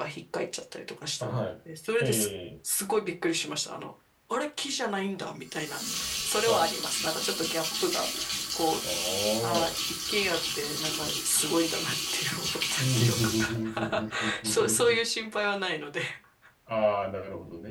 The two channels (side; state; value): both; identical; correlation 1.00